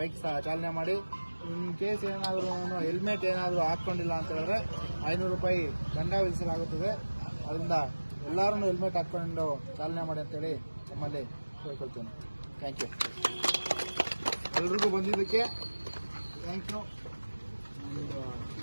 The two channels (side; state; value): both; inverted; correlation -1.00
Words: ಚಾಲನೆ ಮಾಡಿ. ಇನ್ ಕೇಸ್ ಏನಾದರೂ ಹೆಲ್ಮೆಟ್ ಏನಾದರೂ ಹಾಕ್ಕೊಂಡಿಲ್ಲ ಅಂತ ಹೇಳಿದ್ರೆ 500 ರೂಪಾಯಿ ದಂಡ ವಿಧಿಸಲಾಗುತ್ತದೆ. ಅದರಿಂದ ಎಲ್ಲರೂ ಹೆಲ್ಮೆಟ್ ಹಾಕ್ಕೊಂಡು ಚಾಲನೆ ಮಾಡಿ ಅಂತೇಳಿ ನಮ್ಮಲ್ಲಿ ಕೇಳ್ಕೊಳ್ತೇನೆ. Thank you. ಎಲ್ರಿಗೂ ಬಂದಿದ್ದಕ್ಕೆ ಥ್ಯಾಂಕ್ ಯು.